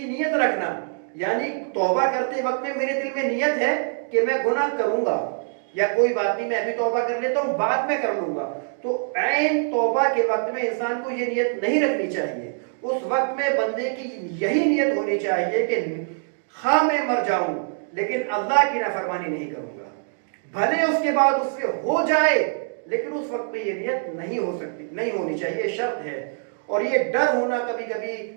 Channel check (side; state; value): left; silent; digital silence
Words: نیت رکھنا، یعنی توبہ کرتے وقت میں میرے دل میں نیت ہے کہ میں گناہ کروں گا، یا کوئی بات نہیں میں ابھی توبہ کر لیتا ہوں بعد میں کر لوں گا. تو عین توبہ کے وقت میں انسان کو یہ نیت نہیں رکھنی چاہیے. اس وقت میں بندے کی یہی نیت ہونی چاہیے کہ خواہ میں مر جاؤں لیکن اللہ کی نافرمانی نہیں کروں گا، بھلے اس کے بعد اس سے ہو جائے لیکن اس وقت میں یہ نیت نہیں ہو سکتی، نہیں ہونی چاہیے، شرط ہے. اور یہ ڈر ہونا، کبھی کبھی